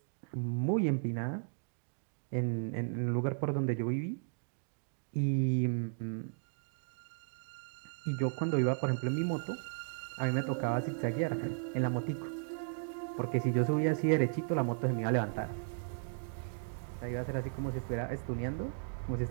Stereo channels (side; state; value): left; silent; digital silence